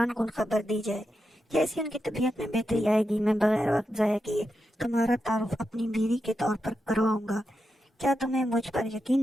کن خبر دی جائے۔ جیسی ان کی طبیعت میں بہتری آئے گی، میں بغیر وقت ضائع کیے تمہارا تعارف اپنی بیوی کے طور پر کرواؤں گا۔ کیا تمہیں مجھ پر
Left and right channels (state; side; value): normal; both; correlation 0.87